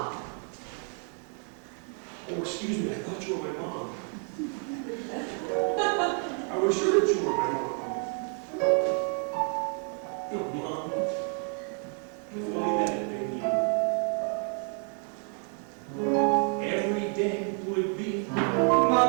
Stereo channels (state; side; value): quieter; left; 40.0 dB